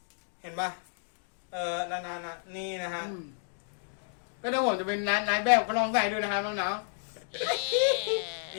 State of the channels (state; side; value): silent; right; digital silence